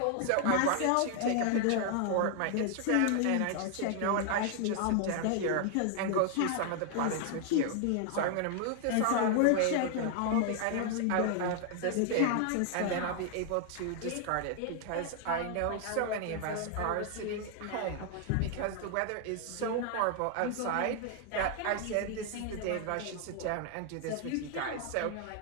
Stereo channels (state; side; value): different; both; correlation 0.00